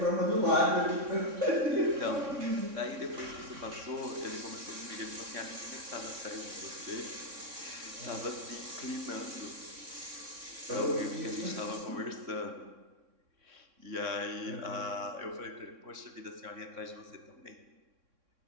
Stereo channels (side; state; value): left; late; 3.6 ms